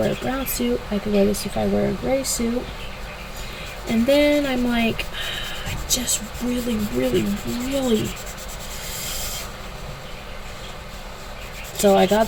a brown suit. I could wear this if I wear a gray suit. And then I'm like, I just really. So I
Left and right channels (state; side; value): identical; both; correlation 1.00